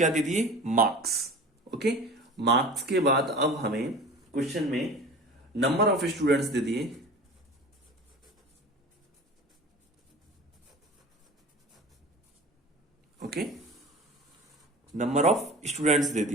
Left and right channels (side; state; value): both; normal; correlation 0.38